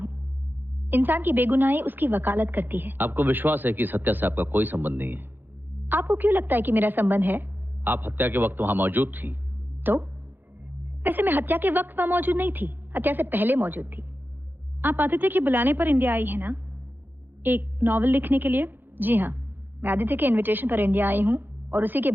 इंसान की बेगुनाही उसकी वकालत करती है। आपको विश्वास है कि इस हत्या से आपका कोई संबंध नहीं है? आपको क्यों लगता है कि मेरा संबंध है? आप हत्या के वक्त वहां मौजूद थी। तो वैसे मैं हत्या के वक्त वहां मौजूद नहीं थी, हत्या से पहले मौजूद थी। आप आदित्य के बुलाने पर इंडिया आई है ना, एक नॉवल लिखने के लिए? जी हाँ, मैं आदित्य के इनविटेशन पर इंडिया आई हूँ और उसी के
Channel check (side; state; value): left; late; 0.096 ms